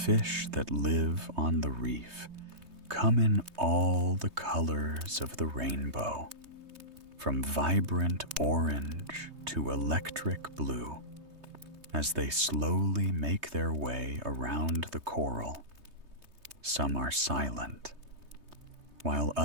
that live on the reef come in all the colors of the rainbow, from vibrant orange to electric blue, as they slowly make their way around the coral. Some are silent, while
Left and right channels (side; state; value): left; late; 3.2 ms